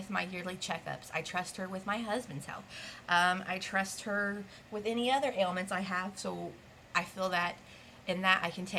my yearly checkups. I trust her with my husband's health. I trust her with any other ailments I have. So I feel that in that I can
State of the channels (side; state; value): both; identical; correlation 1.00